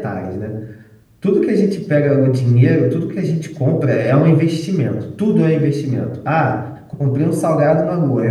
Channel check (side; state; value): both; identical; correlation 1.00